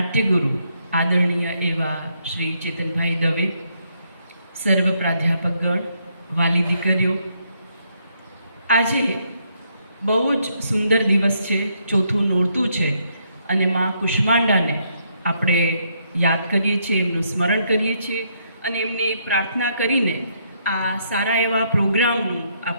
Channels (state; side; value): inverted; both; correlation -0.74